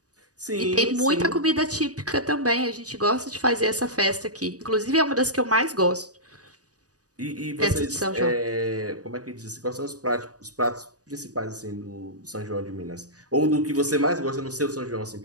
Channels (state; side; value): late; left; 0.67 ms